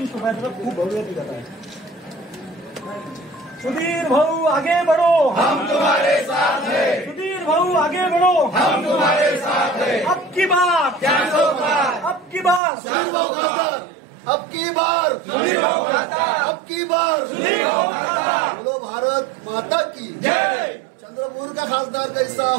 शोभायात्रा खूप भव्य दिसत आहे। सुधीर भाऊ आगे बढ़ो, हम तुम्हारे साथ हैं। सुधीर भाऊ आगे बढ़ो, हम तुम्हारे साथ हैं। अब की बार 400 पार, अब की बार सर्वो खासदार, अब की बार सुधीर भाऊ खासदार, अब की बार सुधीर भाऊ खासदार। बोलो भारत माता की जय। चंद्रपुर का खासदार कैसा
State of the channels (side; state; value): left; drops out; at 12.6 s